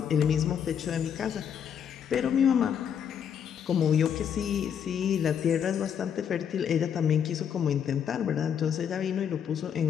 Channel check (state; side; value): quieter; right; 8.2 dB